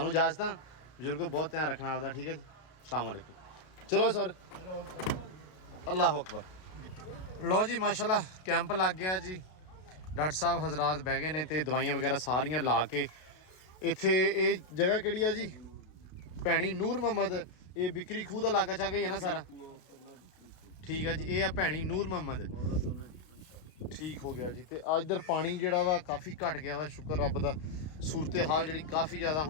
ਇਜਾਜ਼ਤ ਆ, ਬਜ਼ੁਰਗੋ ਬਹੁਤ ਧਿਆਨ ਰੱਖਣਾ ਆਪਦਾ, ਠੀਕ ਹੈ ਜੀ। ਅਸਲਾਮ ਵਾਲੇਕੁਮ। ਚਲੋ ਸਰ, ਅੱਲਾਹੁ ਅਕਬਰ। ਲਓ ਜੀ ਮਾਸ਼ਾਅੱਲਾ ਕੈਂਪ ਲੱਗ ਗਿਆ ਜੀ। ਡਾਕਟਰ ਸਾਹਿਬ ਹਜ਼ਰਾਤ ਬਹਿ ਗਏ ਨੇ ਤੇ ਦਵਾਈਆਂ ਵਗੈਰਾ ਸਾਰੀਆਂ ਲਾ ਕੇ। ਇੱਥੇ ਇਹ ਜਗ੍ਹਾ ਕਿਹੜੀ ਆ ਜੀ? ਭੈਣੀ ਨੂਰ ਮੁਹੰਮਦ। ਇਹ ਬਿਕਰੀ ਖੂਹ ਦਾ ਇਲਾਕਾ ਚਾ ਗਈ ਹੈ ਨਾ ਸਾਰਾ? ਠੀਕ ਆ ਜੀ, ਇਹ ਆ ਭੈਣੀ ਨੂਰ ਮੁਹੰਮਦ। ਠੀਕ ਹੋ ਗਿਆ ਜੀ। ਤੇ ਆ ਇੱਧਰ ਪਾਣੀ ਜਿਹੜਾ ਵਾ ਕਾਫੀ ਘਟ ਗਿਆ ਵਾ, ਸ਼ੁਕਰ ਰੱਬ ਦਾ। ਸੂਰਤ ਹਾਲ ਜਿਹੜੀ ਕਾਫੀ ਜ਼ਿਆਦਾ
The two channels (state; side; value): late; right; 32 ms